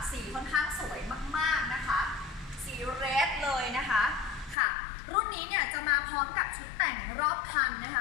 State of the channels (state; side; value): drops out; right; at 4.5 s